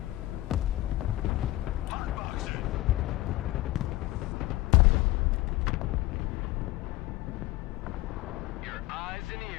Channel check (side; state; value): right; quieter; 17.5 dB